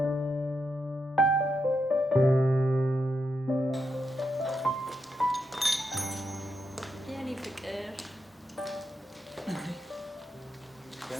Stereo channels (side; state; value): both; normal; correlation 0.83